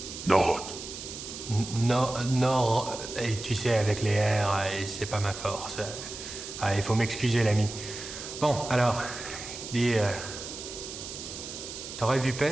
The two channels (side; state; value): right; noise; hiss, 10 dB below the sound